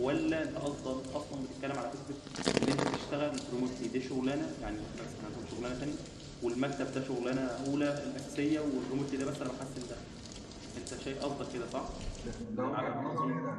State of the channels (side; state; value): both; identical; correlation 1.00